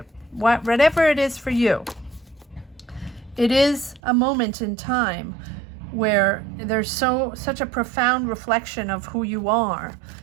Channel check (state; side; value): drops out; left; at 4.0 s